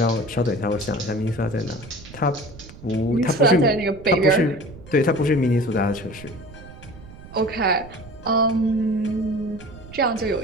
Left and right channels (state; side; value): noise; right; rumble, 17 dB below the sound